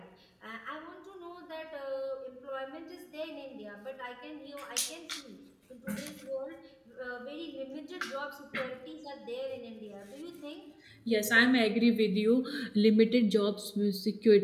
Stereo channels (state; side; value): identical; both; correlation 1.00